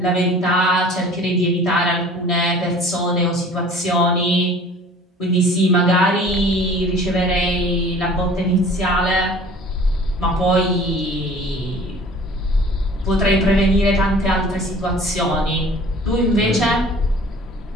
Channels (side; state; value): both; normal; correlation 0.47